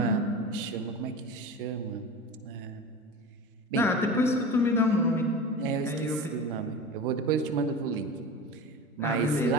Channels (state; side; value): normal; both; correlation 0.30